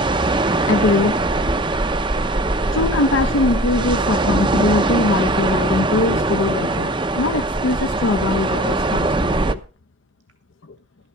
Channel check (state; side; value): normal; both; correlation 0.41